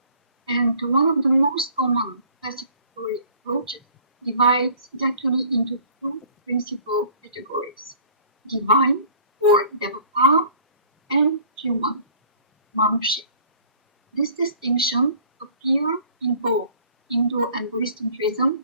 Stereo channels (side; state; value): both; inverted; correlation -0.53